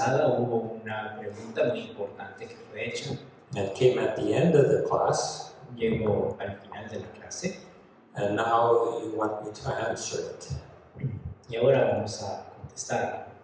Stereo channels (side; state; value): both; identical; correlation 1.00